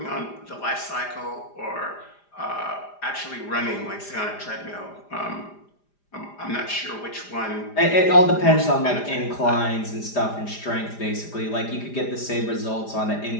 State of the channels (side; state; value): right; late; 4.9 ms